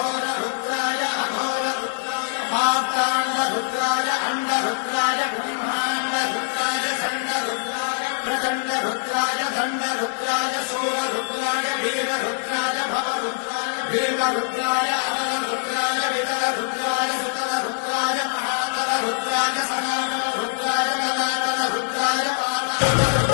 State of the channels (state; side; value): silent; right; digital silence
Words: अघोररुद्राय मात्राण्डरुद्राय अण्डरुद्राय ब्रह्माण्डरुद्राय खण्डरुद्राय प्रचण्डरुद्राय दण्डरुद्राय शूररुद्राय वीररुद्राय भवरुद्राय भीमरुद्राय अतलरुद्राय वितलरुद्राय सुतलरुद्राय महातलरुद्राय सकातलरुद्राय जलातलरुद्राय